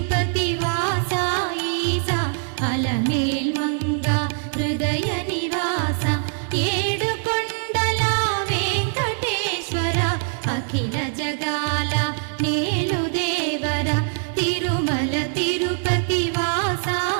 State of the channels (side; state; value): left; silent; digital silence